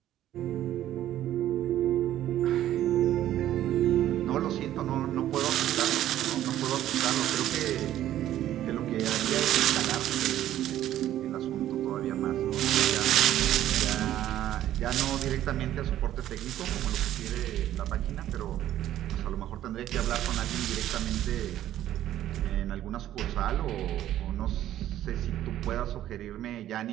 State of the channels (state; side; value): quieter; left; 12.6 dB